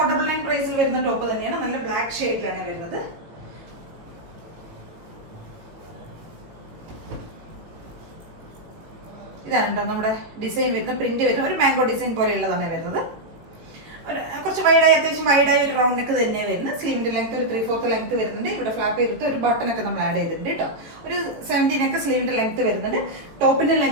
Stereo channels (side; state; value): left; late; 18 ms